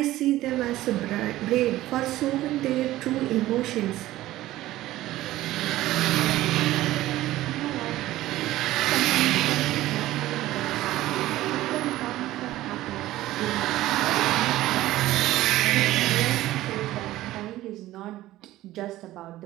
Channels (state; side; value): quieter; left; 15.7 dB